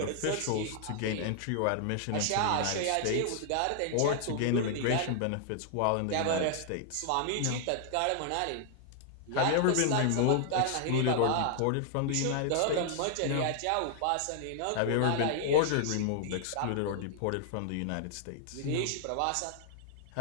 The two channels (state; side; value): different; both; correlation 0.00